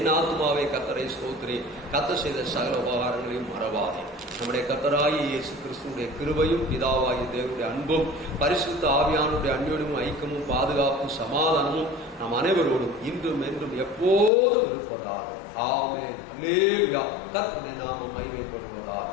ஆத்மாவே கர்த்தரை ஸ்தோத்திரி, கர்த்தர் செய்த சகல உபகாரங்களையும் மறவாதே. நம்முடைய கர்த்தராகிய இயேசு கிறிஸ்துவுடைய கிருபையும், பிதாவாகிய தேவனுடைய அன்பும், பரிசுத்த ஆவியானுடைய அந்யோன்யமும், ஐக்கியமும், பாதுகாப்பும், சமாதானமும் நம் அனைவரோடும் இன்றும் என்றும் எப்போதும் இருப்பதாக. ஆமென். அல்லேலூயா. கர்த்தருடைய நாமம் மகிமைப்படுவதாக.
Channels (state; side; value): drops out; right; at 14.3 s